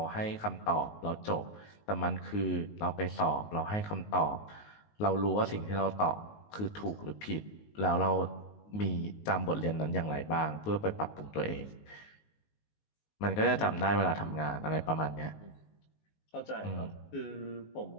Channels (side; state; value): right; late; 19 ms